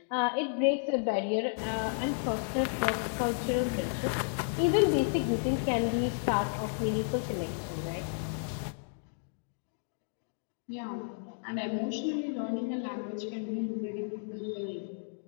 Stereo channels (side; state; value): right; silent; digital silence